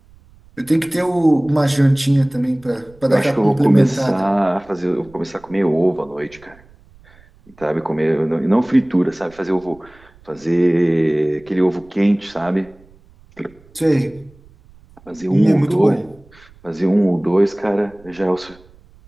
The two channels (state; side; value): noise; right; rumble, 27 dB below the sound